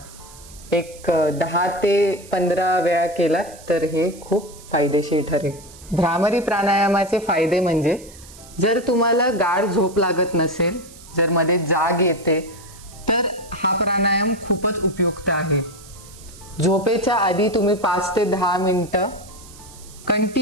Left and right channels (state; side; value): noise; right; hiss, 20 dB below the sound